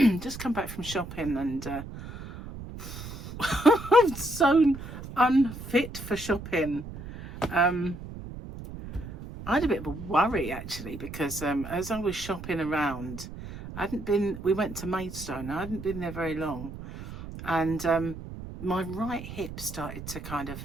just come back from shopping, and I'm so unfit for shopping. I had a bit of a worry actually, because as I was shopping around, we went to Maidstone. I hadn't been there very long, and my right hip started to kind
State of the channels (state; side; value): noise; right; rumble, 11 dB below the sound